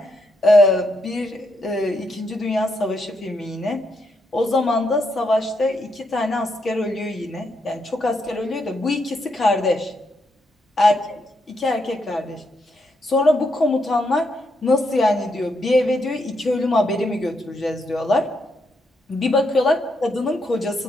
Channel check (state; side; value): normal; both; correlation 0.79